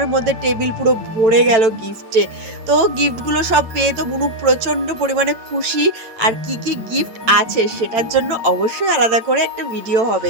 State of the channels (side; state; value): left; late; 9.0 ms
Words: মধ্যে টেবিল পুরো ভরে গেল গিফটে তো গিফটগুলো সব পেয়ে তো বুনু প্রচণ্ড পরিমাণে খুশি আর কি গিফট আছে সেটার জন্য অবশ্যই আলাদা করে একটা ভিডিও